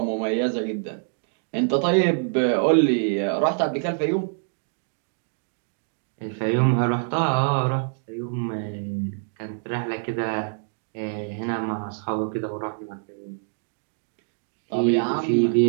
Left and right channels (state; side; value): silent; left; digital silence